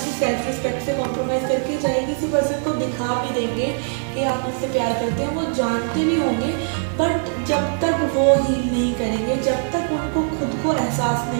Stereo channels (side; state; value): left; silent; 65 dB below the other